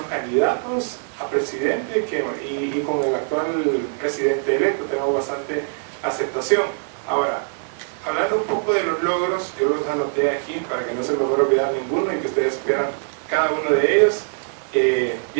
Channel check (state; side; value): silent; left; 64 dB below the other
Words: candidatos a presidente y con el actual presidente electo tenemos bastante aceptación. Ahora, hablando un poco de los logros, yo los anoté aquí para que no se me fuera a olvidar ninguno y que ustedes supieran cada uno de ellos.